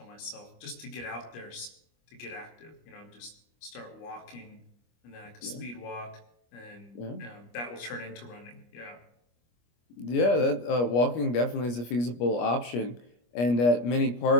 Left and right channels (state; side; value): late; right; 25 ms